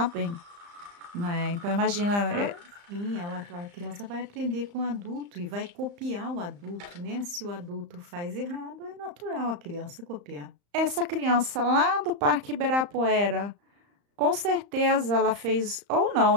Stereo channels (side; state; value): left; late; 35 ms